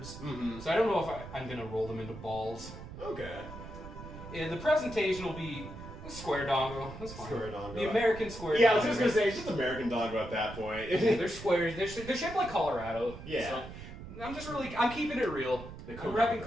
Mm-hmm. So I don't know if I'm going to roll them into balls. Okay. Yeah, the presentation will be square dongo. That's fine. Square dongo. The American square Yeah, I dongo. was just gonna say, it's just American Dongo at that point. They're squares. They're shaped like Colorado. Yeah. So I'm keeping it real. I'm repping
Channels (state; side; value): noise; right; rumble, 12 dB below the sound